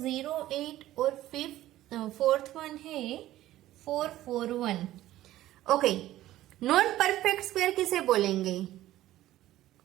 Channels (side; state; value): left; quieter; 14.7 dB